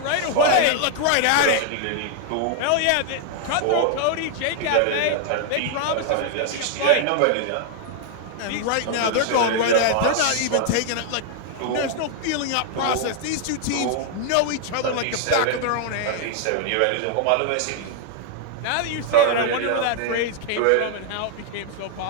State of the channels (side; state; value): both; different; correlation 0.00